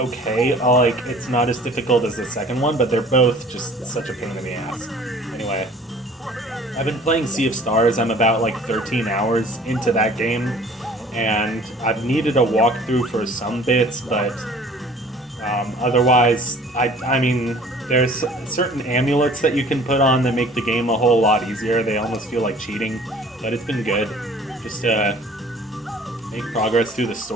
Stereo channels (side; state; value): both; normal; correlation 0.50